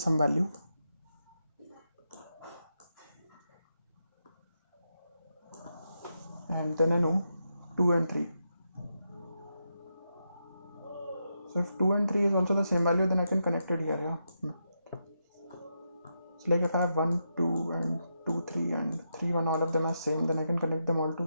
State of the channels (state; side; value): inverted; both; correlation -0.84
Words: value, and then I know 2 and 3. So if 2 and 3 is also the same value, then I can connect it here, yeah. So like if I have 1, 2 and 2, 3 and 3, 1, all of them are same, then I can connect them all